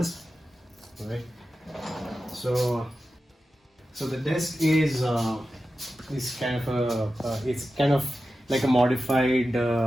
All right. So the desk is kind of it's kind of like a modified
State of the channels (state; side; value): normal; both; correlation 0.92